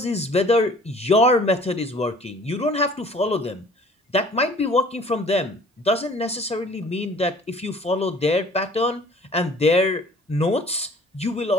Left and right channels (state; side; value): normal; both; correlation 0.51